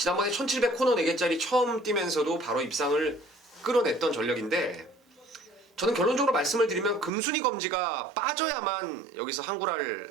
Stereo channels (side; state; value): left; drops out; at 7.1 s